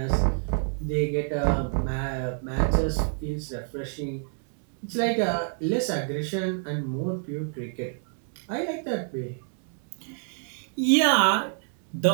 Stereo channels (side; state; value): left; silent; 60 dB below the other